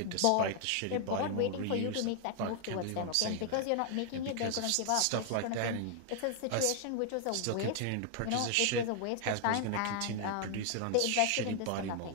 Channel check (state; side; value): different; both; correlation 0.00